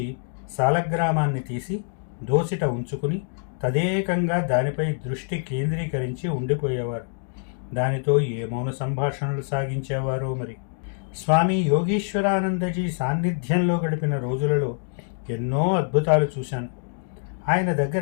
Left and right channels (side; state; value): right; silent; digital silence